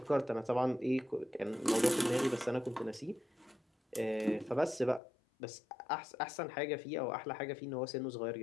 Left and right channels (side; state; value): right; drops out; at 5.0 s